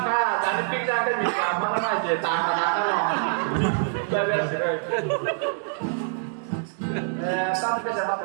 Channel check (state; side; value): silent; left; digital silence